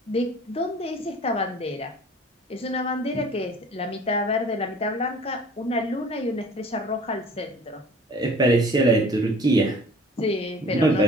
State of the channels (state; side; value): normal; both; correlation 0.47